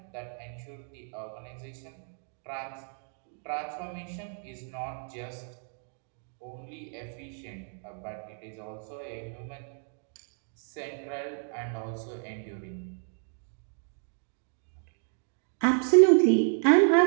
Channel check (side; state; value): left; silent; 57 dB below the other